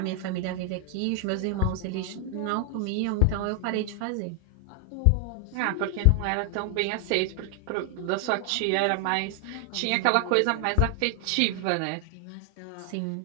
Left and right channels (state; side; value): different; both; correlation 0.00